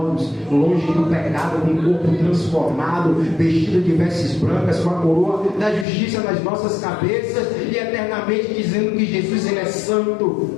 longe do pecado, com o corpo transformado, vestido de vestes brancas, com a coroa da justiça nas nossas cabeças, e eternamente dizendo que Jesus ele é santo,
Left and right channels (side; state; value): right; drops out; at 5.9 s